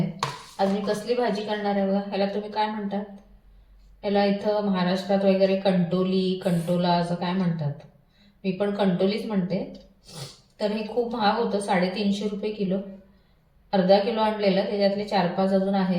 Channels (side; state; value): both; identical; correlation 1.00